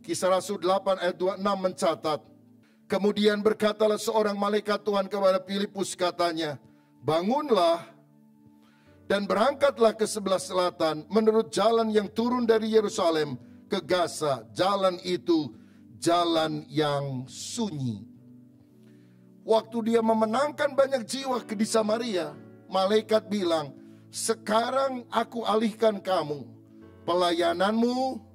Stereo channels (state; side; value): identical; both; correlation 1.00